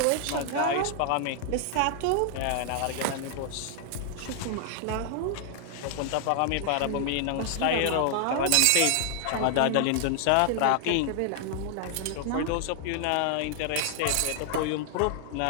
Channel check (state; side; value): different; both; correlation 0.00